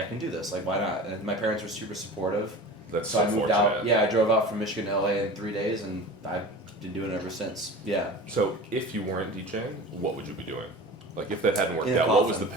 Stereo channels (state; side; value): normal; both; correlation 0.36